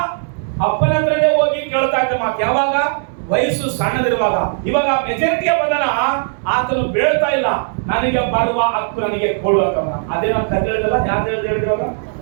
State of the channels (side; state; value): left; silent; digital silence